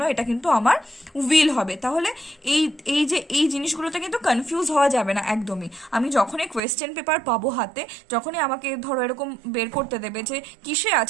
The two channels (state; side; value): drops out; left; at 6.6 s